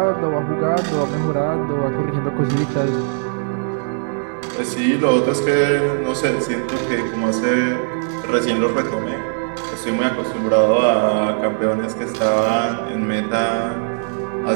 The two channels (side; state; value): left; silent; 66 dB below the other